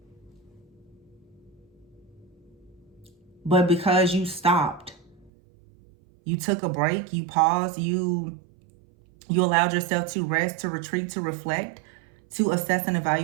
But because you stopped, you took a break, you paused, you allowed yourself to rest, to retreat, to reflect, to assess and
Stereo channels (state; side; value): drops out; left; at 5.3 s